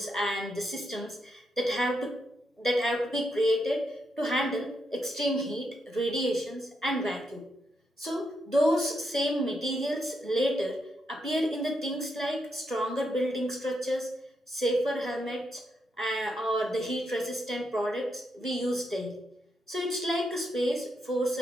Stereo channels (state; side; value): normal; both; correlation 0.81